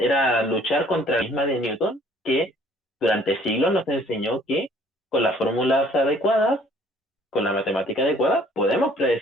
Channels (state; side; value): normal; both; correlation 0.58